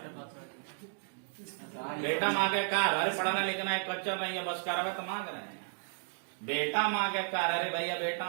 बेटा मांगे कार। अरे पढ़ना लिखना है कच्चा नहीं है, बस कारवा तो मांग रहे हैं। बेटा मांगे कार। अरे भैया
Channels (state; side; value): silent; left; digital silence